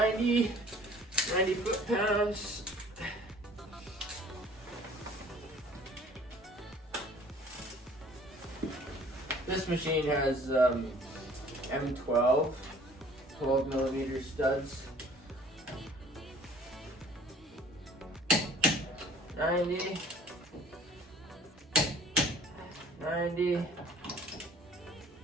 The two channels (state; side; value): normal; both; correlation 0.52